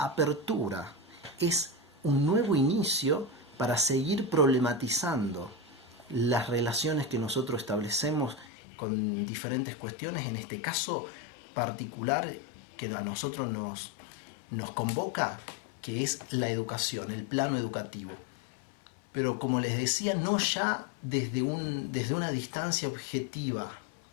es un nuevo inicio para seguir problematizando las relaciones que nosotros establecemos con diferentes cuestiones, en este caso particular que a nosotros nos convoca, que es la educación, el plano educativo. Pero como les decía, no ya desde una distancia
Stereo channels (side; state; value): right; drops out; at 8.5 s